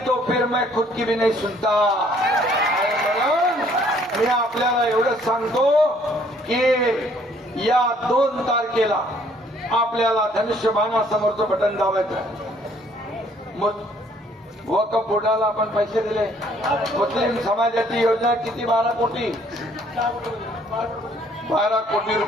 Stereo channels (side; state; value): both; normal; correlation 0.62